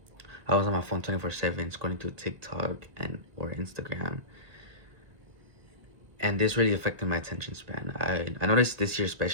I was on my phone 24/7 scrolling through TikTok and or Instagram, and this really affected my attention span. I noticed this year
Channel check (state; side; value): late; left; 1.7 ms